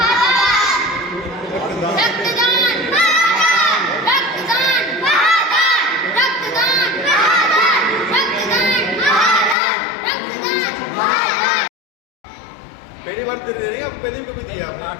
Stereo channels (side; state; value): right; drops out; at 9.6 s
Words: रक्तदान रक्तदान रक्तदान रक्तदान रक्तदान। पहली बार दे रहे हैं आप? पहले भी कभी दिया